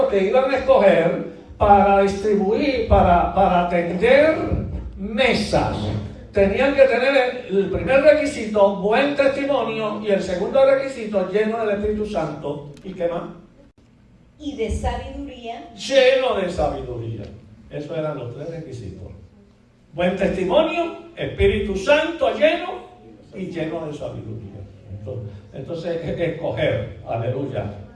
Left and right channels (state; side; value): identical; both; correlation 1.00